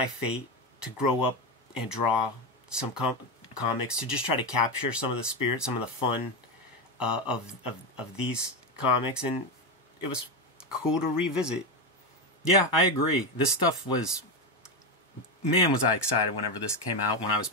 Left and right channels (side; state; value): both; normal; correlation 0.12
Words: fate to grow up and draw some comics, to just try to capture some of the spirit, some of the fun of these comics, and it was cool to revisit. Yeah, I agree. This stuff was... Man, was I excited whenever this came out, when I was